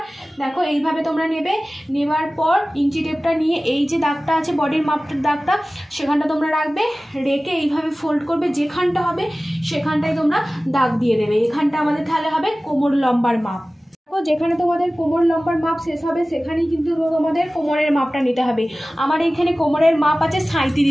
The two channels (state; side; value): normal; both; correlation 0.97